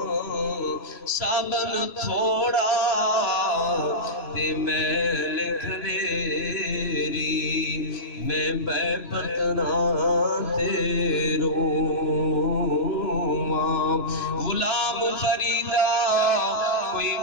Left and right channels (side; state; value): right; late; 2.9 ms